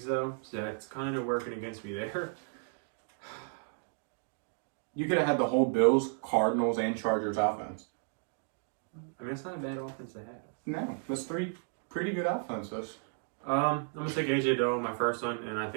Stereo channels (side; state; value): left; silent; 56 dB below the other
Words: though, so that's kind of working against me there. You could have had the whole Bills, Cardinals, and Chargers offense. I mean, it's not a bad offense to have. No, that's 3 pretty good offenses. I'm going to take AJ Dillon, my first one, and I